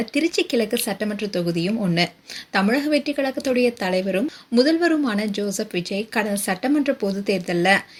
திருச்சி கிழக்கு சட்டமன்ற தொகுதியும் ஒண்ணு. தமிழக வெற்றி கழகத்துடைய தலைவரும் முதல்வருமான ஜோசப் விஜய் கடந்த சட்டமன்ற பொது தேர்தலில்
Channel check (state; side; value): identical; both; correlation 1.00